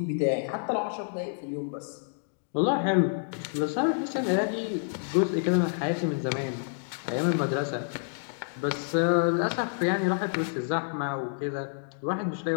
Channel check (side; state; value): right; silent; digital silence